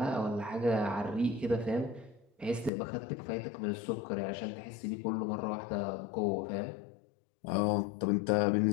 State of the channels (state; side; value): drops out; right; at 2.7 s